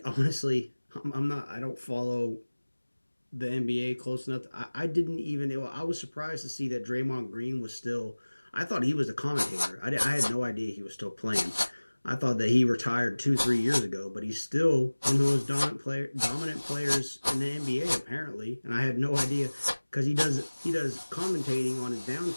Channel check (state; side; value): inverted; both; correlation -1.00